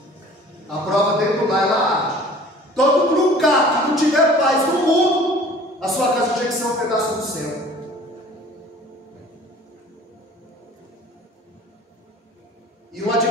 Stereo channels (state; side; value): normal; both; correlation 0.48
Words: A prova dentro do lar, ela arde. Todo lugar que não tiver paz no mundo, a sua casa tinha que ser um pedaço do céu. E o